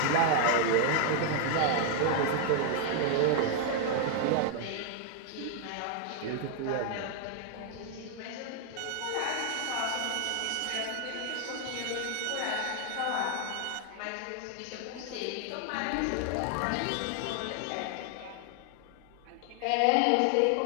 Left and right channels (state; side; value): different; both; correlation 0.00